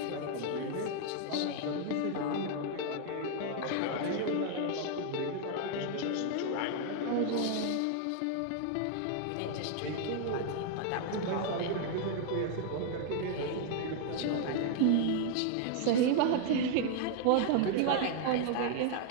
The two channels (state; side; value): different; both; correlation 0.00